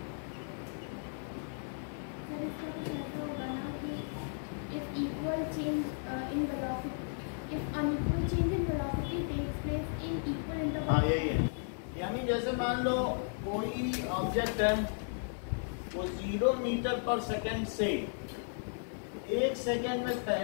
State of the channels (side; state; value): right; silent; 55 dB below the other